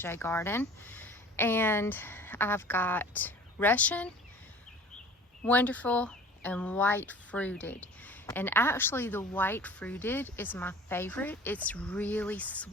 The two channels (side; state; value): both; normal; correlation 0.44